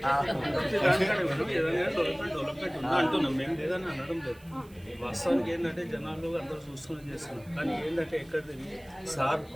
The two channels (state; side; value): noise; right; hiss, 27 dB below the sound